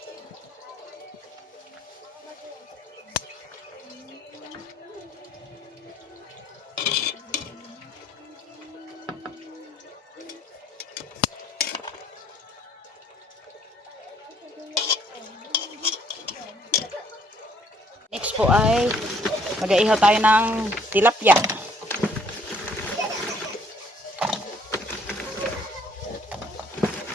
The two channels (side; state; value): both; normal; correlation 0.62